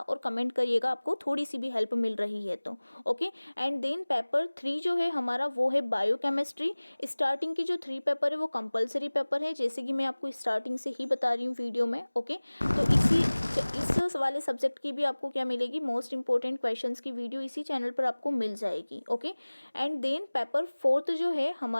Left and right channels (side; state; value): both; inverted; correlation -1.00